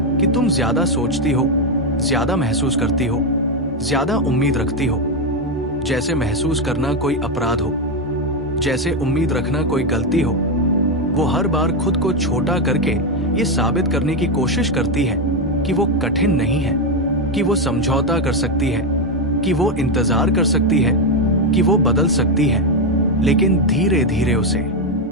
कि तुम ज्यादा सोचती हो, ज्यादा महसूस करती हो, ज्यादा उम्मीद रखती हो। जैसे महसूस करना कोई अपराध हो, जैसे उम्मीद रखना कोई गलती हो। वो हर बार खुद को छोटा करके ये साबित करने की कोशिश करती है कि वो कठिन नहीं है, कि वो समझौता कर सकती है, कि वो इंतजार कर सकती है, कि वो बदल सकती है। लेकिन धीरे धीरे उसे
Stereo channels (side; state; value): both; normal; correlation 0.07